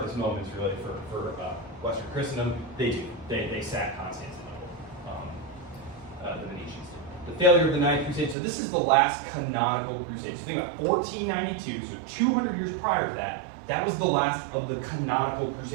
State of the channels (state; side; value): drops out; left; at 8.3 s